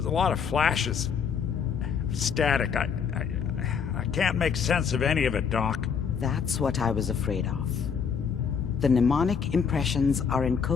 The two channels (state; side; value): quieter; right; 6.6 dB